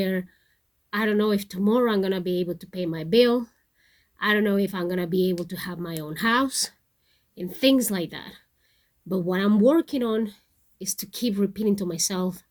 I don't know if tomorrow I'm going to be able to pay my bill. I don't know if I'm going to be able to have my own house and things like that. But what I'm working on is to keep repeating to myself,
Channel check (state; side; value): identical; both; correlation 1.00